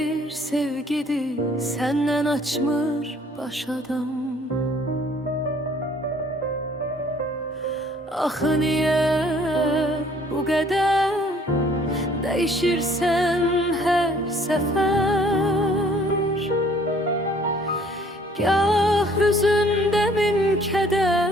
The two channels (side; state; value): both; normal; correlation 0.58